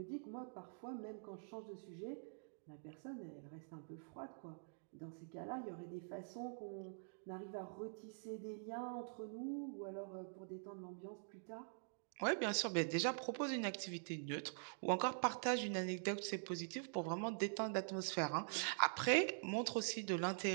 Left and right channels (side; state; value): left; silent; digital silence